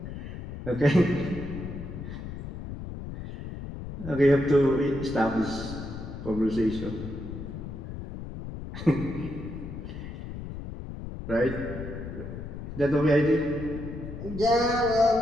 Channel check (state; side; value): noise; left; rumble, 9 dB below the sound